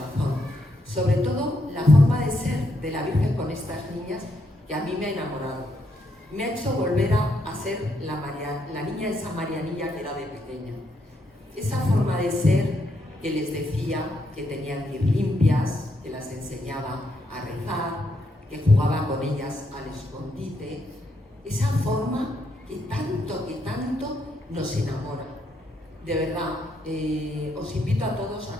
sobre todo la forma de ser de la Virgen con estas niñas que a mí me ha enamorado. Me ha hecho volver a ser la niña esa Marianilla que era de pequeña. Esa forma de ser que les decía que tenían que ir limpias, que las enseñaba a rezar, que jugaba con ellas al escondite. Esa forma que tanto nos enamora. De verdad, os invito a todos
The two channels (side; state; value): both; normal; correlation 0.77